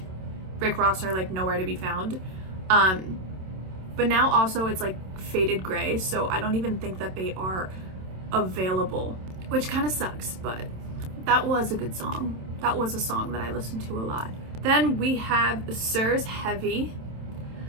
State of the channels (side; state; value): left; late; 27 ms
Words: Rick Ross are like nowhere to be found. But now also it's like faded gray, so I don't even think that they are available, which kind of sucks, but that was a good song. That was a song that I listened to a lot. Then we have Sir's Heavy.